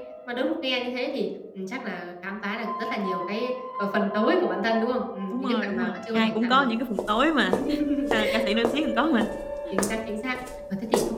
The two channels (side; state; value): both; identical; correlation 1.00